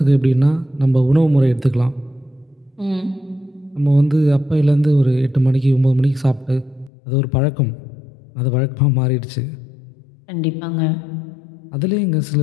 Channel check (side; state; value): right; drops out; at 6.9 s